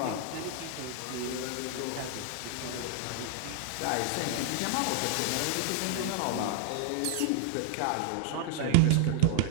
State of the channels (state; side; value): different; both; correlation 0.00